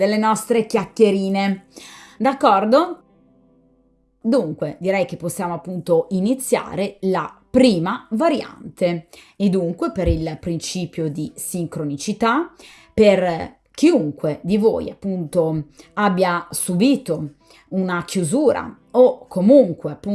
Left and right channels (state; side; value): identical; both; correlation 1.00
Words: nostre chiacchierine. D'accordo? Dunque, direi che possiamo appunto iniziare la prima variante e dunque per il principio di sincronicità, per chiunque di voi appunto abbia subito una chiusura o comunque